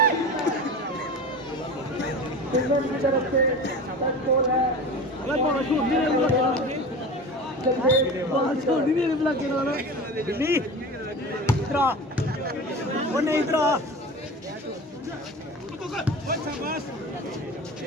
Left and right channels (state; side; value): normal; both; correlation 0.32